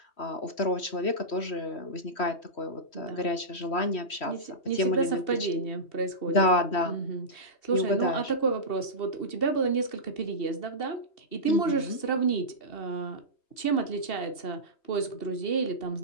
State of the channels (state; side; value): late; right; 3.1 ms